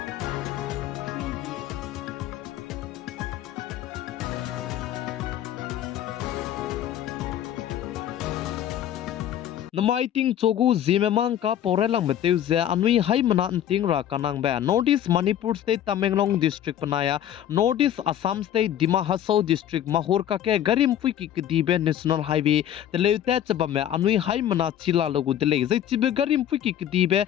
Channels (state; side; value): quieter; right; 10.9 dB